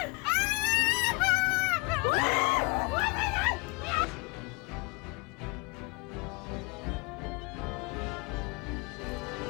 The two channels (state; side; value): quieter; right; 28.0 dB